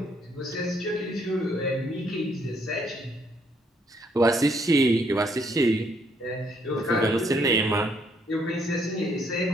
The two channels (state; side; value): normal; both; correlation 0.69